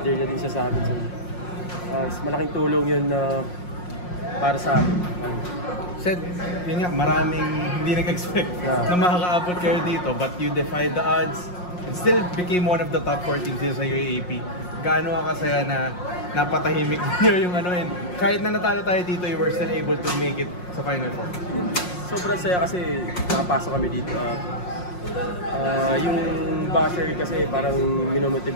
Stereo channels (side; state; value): right; late; 5.6 ms